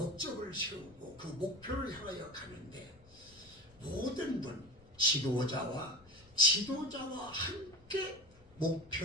세우고 그 목표를 향하여 가는데 모든 분 지도자와 함께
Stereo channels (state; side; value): noise; left; rumble, 25 dB below the sound